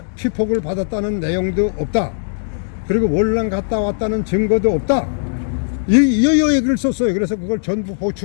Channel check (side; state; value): right; silent; digital silence